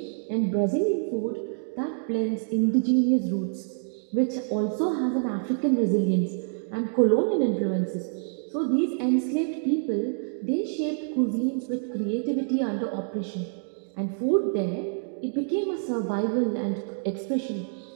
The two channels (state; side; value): silent; left; digital silence